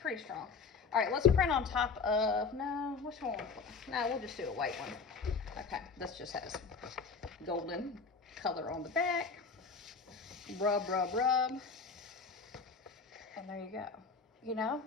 strong. All right, let's print on top of, no, which one? No, we'll just do a white one. Okay, this just has golden color on the back. Rub, rub, rub. And there you go. You know,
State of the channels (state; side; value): quieter; right; 5.0 dB